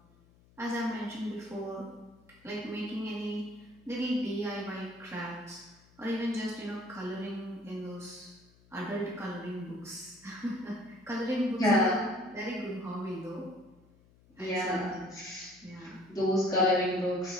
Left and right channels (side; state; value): left; noise; hum, 28 dB below the sound